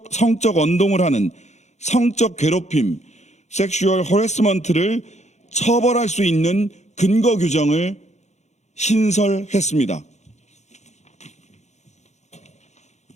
언동을 하는 성적 괴롭힘, 섹슈얼 허래스먼트를 처벌할 수 있는 근거 규정을 신설했습니다.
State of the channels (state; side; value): late; right; 0.33 ms